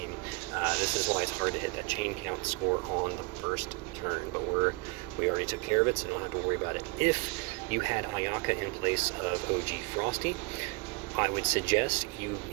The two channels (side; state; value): left; quieter; 27.0 dB